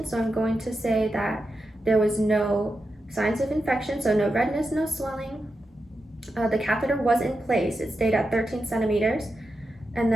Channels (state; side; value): normal; both; correlation 0.88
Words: So I'm going to say that there was no signs of infection, so no redness, no swelling. The catheter was in place. It stayed at 13 centimeters. And